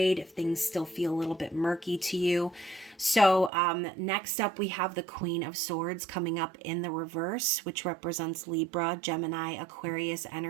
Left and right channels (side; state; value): left; drops out; at 3.5 s